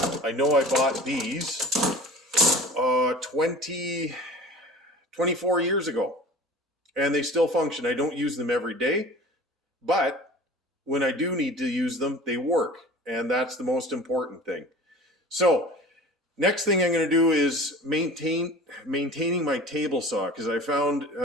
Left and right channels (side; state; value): both; normal; correlation 0.41